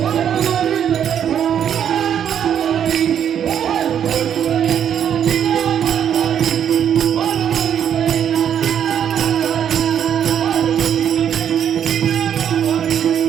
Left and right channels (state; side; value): quieter; left; 9.0 dB